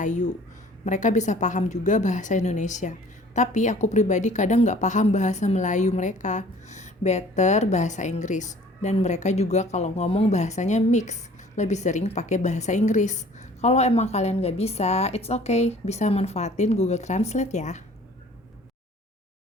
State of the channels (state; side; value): normal; both; correlation 0.51